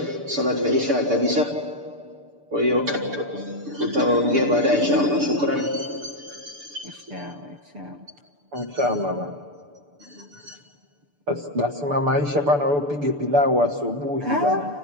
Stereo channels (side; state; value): left; late; 6.9 ms